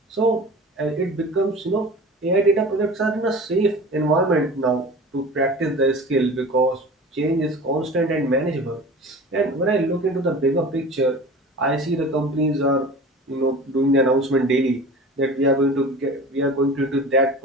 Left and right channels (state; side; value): normal; both; correlation 0.38